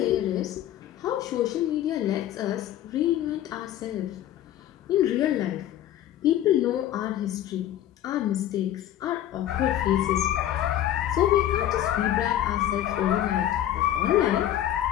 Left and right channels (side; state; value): right; quieter; 12.1 dB